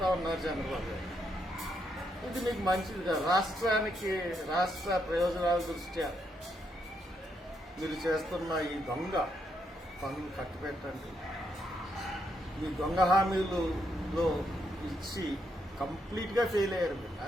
ఉన్నారు చంద్రబాబు గారు. ఇది మీకు మంచిది కాదు. రాష్ట్రానికి, రాష్ట్ర ప్రయోజనాల దృష్ట్యా మీరు చేస్తున్న ఈ దొంగ పనులు కట్టిపెట్టండి. ఈ దొంగ హామీలలో ఇచ్చి కంప్లీట్గా ఫెయిల్ అయ్యారు మీరు.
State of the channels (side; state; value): both; normal; correlation 0.78